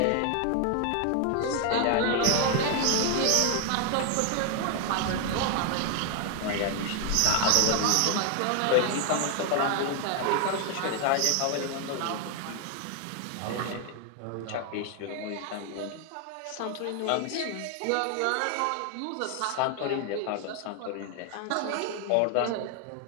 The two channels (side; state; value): both; different; correlation 0.01